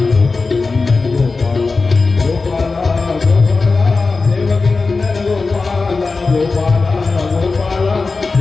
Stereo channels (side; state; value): right; quieter; 4.0 dB